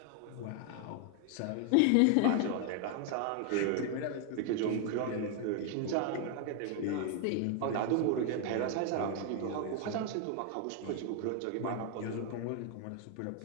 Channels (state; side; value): different; both; correlation 0.00